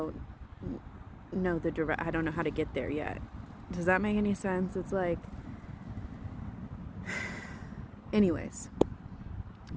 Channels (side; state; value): both; identical; correlation 1.00